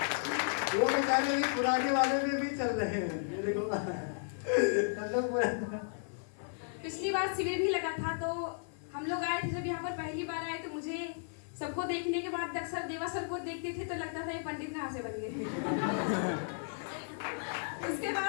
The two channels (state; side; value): silent; right; 55 dB below the other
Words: वो बेचारे अभी पुराने वाले में भी चल रहे हैं। ये देखो सब लोग पूरा। पिछली बार शिविर भी लगा था तो हम लोग आए थे, जब यहाँ पर पहली बार आए तो मुझे सबको देखने के बाद अक्सर देवा सर को देखते थे तो लगता था ये पंडित कहाँ से बन गए। उसके